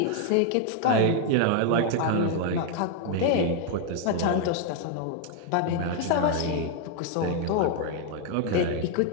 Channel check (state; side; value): different; both; correlation 0.00